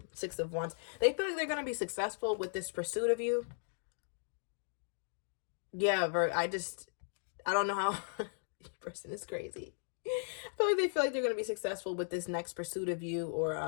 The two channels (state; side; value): silent; right; digital silence